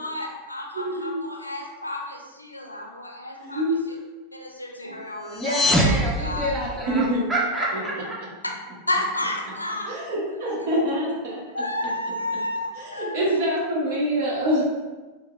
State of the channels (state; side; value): normal; both; correlation -0.09